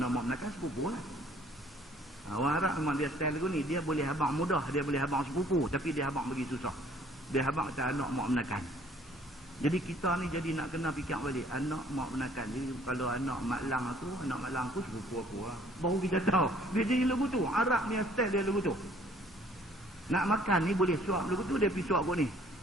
mak menakan sepupu lah. Orang Arab memang dia style lagu ni, dia boleh abang mudah, dia boleh abang sepupu, tapi dia abang bagi susah. Dia abang kata anak mak menakan. Jadi kita ni jadi nak kena fikir balik anak mak menakan. Jadi kalau anak mak lang aku sepupu aku lah. Baru kita tahu dia jadi lagu tu. Arab ni style dia lagu tu. Nak makan ni boleh suap lagu tu, dia pergi suap kot ni.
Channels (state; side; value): normal; both; correlation 0.58